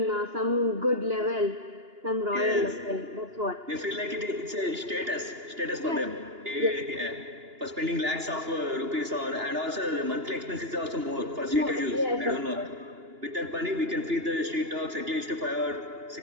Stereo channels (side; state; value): left; late; 2.9 ms